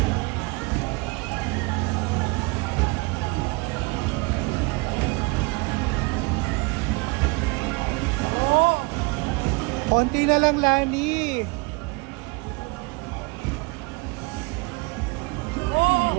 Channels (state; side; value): quieter; left; 28.1 dB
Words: Konti na lang, Lani.